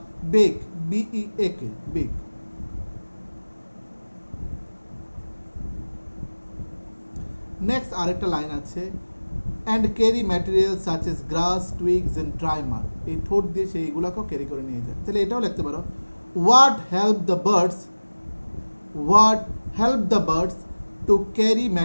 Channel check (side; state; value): both; inverted; correlation -1.00